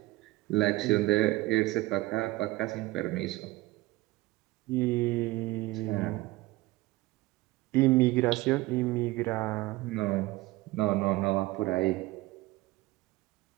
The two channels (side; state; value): left; quieter; 19.3 dB